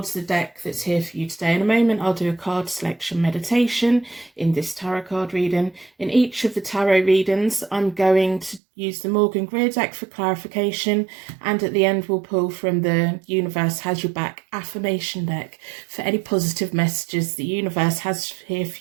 the deck that's here for you today. In a moment, I'll do a card selection meditation in this tarot card reading. In each of the tarot readings, I'm going to use the Morgan Greer deck for clarification, and at the end, we'll pull from the Universe Has Your Back affirmation deck for any positive messages the universe has here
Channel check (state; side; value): drops out; left; at 8.6 s